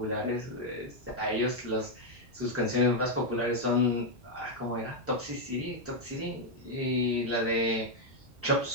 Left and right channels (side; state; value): both; normal; correlation -0.01